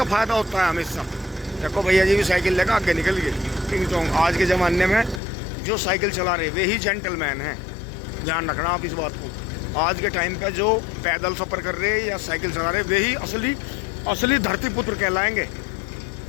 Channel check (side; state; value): right; drops out; at 5.2 s